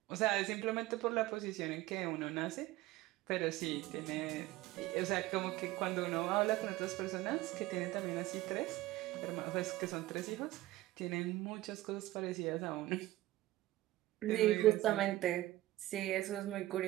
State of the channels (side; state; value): left; quieter; 16.8 dB